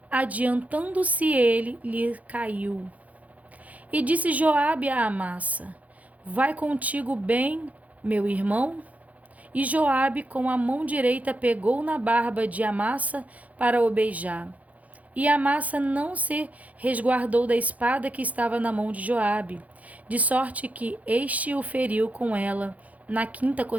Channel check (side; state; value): left; late; 0.071 ms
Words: adiantando-se ele, lhe caiu. E disse Joabe a Amasa: Vai contigo bem, meu irmão? E Joabe com a mão direita pegou na barba de Amasa para o beijar. E Amasa não se resguardou da espada que estava na mão de Joabe, de sorte que este o feriu com ela na quinta